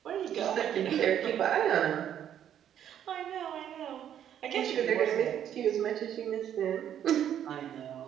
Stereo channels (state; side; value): quieter; left; 10.0 dB